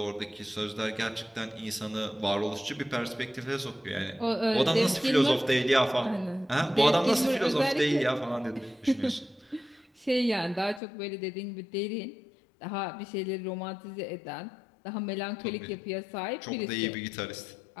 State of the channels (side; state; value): right; drops out; at 10.8 s